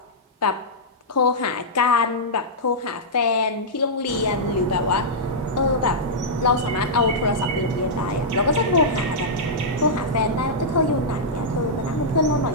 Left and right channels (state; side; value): normal; both; correlation -0.11